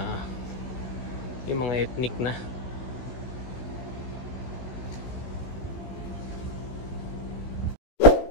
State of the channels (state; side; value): late; right; 16 ms